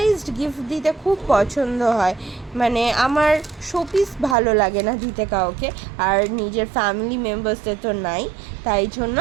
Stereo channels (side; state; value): left; drops out; at 4.4 s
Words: গিফট দিতে খুব পছন্দ হয়, মানে আমার শোপিস ভালো লাগে না দিতে কাউকে, আর নিজের ফ্যামিলি মেম্বার্সদের তো নাই, তাই জন্য